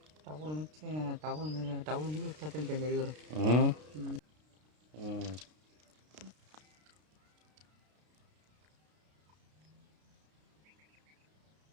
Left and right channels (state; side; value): late; left; 33 ms